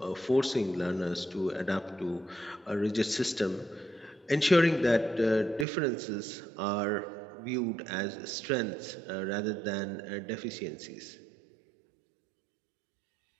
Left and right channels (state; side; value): drops out; left; at 5.7 s